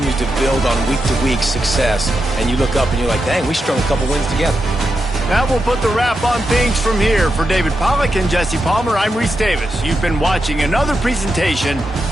to build on week-to-week success. And you look up and you're like, dang, we strung a couple wins together. That will put the wrap on things from here. For David Pollack and Jesse Palmer, I'm Reese Davis. You've been watching another presentation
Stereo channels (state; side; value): normal; both; correlation 0.86